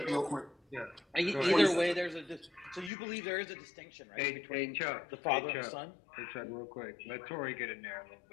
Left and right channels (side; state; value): right; drops out; at 2.9 s